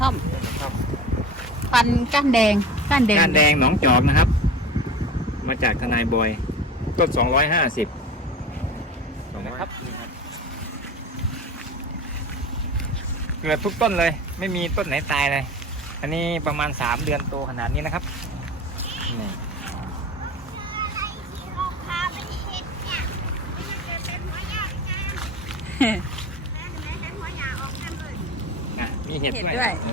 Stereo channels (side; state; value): both; normal; correlation 0.33